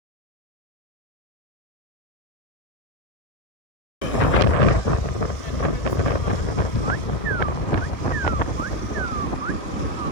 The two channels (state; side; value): late; right; 1.3 ms